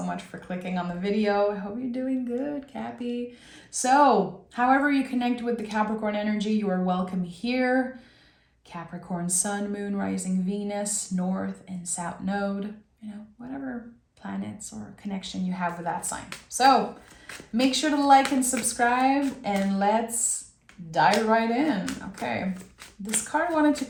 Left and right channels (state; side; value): identical; both; correlation 1.00